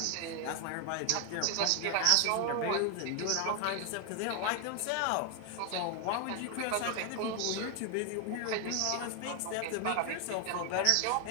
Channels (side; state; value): both; different; correlation 0.01